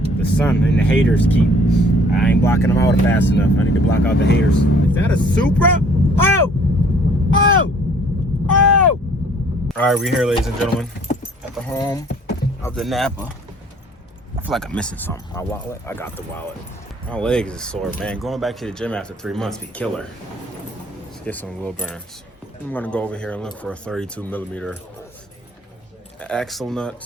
The sun and the haters keep. I ain't blocking them out fast enough. I need to block out the haters. Is that a Supra? Oh! Oh! Oh! All right, we're here, ladies and gentlemen, at the home of the Napa. I feel like I'm missing something. My wallet? I got the wallet. My legs is sore, man. Going back to the gym after 3 months be killer. Let's get some wheel bearings. I'm gonna go over here and look for a 32mm axle nut,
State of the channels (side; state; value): both; normal; correlation 0.56